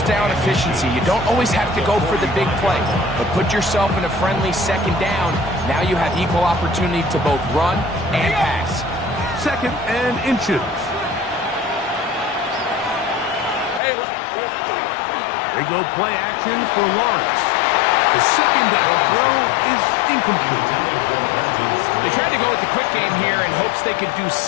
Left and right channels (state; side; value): drops out; right; at 13.8 s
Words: down efficiency. You don't always have to go for the big play, but put yourself in a friendly second down. Now you have equal opportunity to both run and pass. 2nd and inches. Hey, They go play action for Lawrence. The second down throw is incomplete. They tried to go with the quick game here in hopes they could do